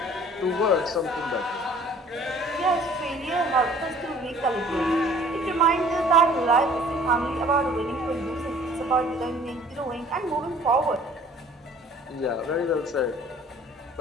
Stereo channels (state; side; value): normal; both; correlation 0.53